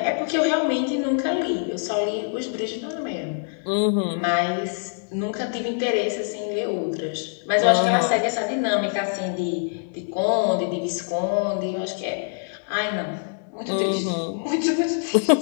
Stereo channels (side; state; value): right; silent; digital silence